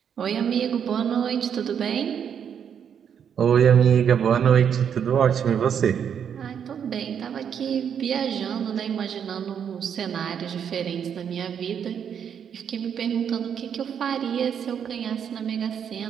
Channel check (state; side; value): quieter; left; 8.1 dB